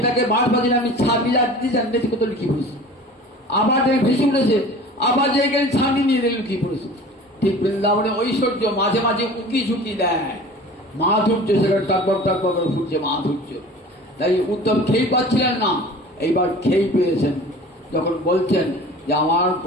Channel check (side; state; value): both; normal; correlation 0.41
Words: বারবার আমি ছাপিয়ে যাচ্ছি জানতে কত লুকিয়ে পড়েছে। আবার ভেসে উঠেছে, আবার যে গেলে ছানি নিয়ে লুকিয়ে পড়েছে। ঠিক বৃন্দাবনে ঐশ্বর্য মাঝে মাঝে উঁকি ঝুঁকি দেয়, মাধুর্য সেখানে তারপর ফুটছে মাধুর্য। তাই উদ্ধব খেয়ে পাচ্ছিলেন না, এইবার খেয়ে পেয়েছেন। যখন বলছেন যে আমার